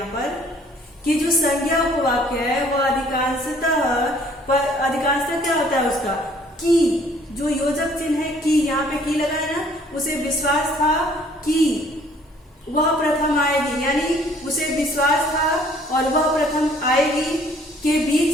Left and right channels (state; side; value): normal; both; correlation 0.58